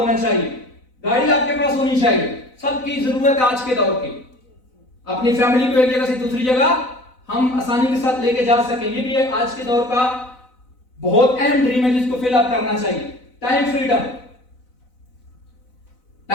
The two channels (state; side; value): late; right; 4.0 ms